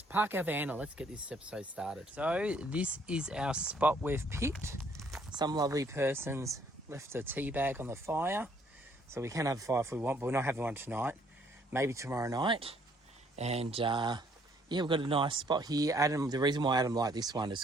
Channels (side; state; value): both; normal; correlation 0.65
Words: park our van and let's get this episode started. So this is our spot we've picked. Some lovely persons left a tea bag on the fire, so we can have a fire if we want, but we're not having one tonight. Maybe tomorrow night. And yeah, we've got a nice spot here. Adam, the reason why Adam liked this one is